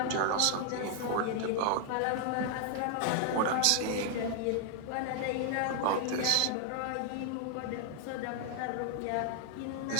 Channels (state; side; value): different; both; correlation 0.00